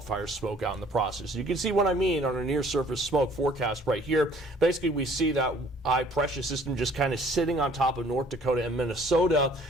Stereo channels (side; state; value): both; normal; correlation 0.56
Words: smoke out in the process. You can see what I mean on our near surface smoke forecast right here. Basically, we see that high pressure system just kind of sitting on top of North Dakota and Minnesota